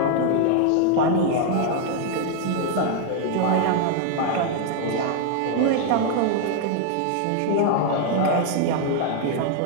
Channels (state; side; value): different; both; correlation 0.00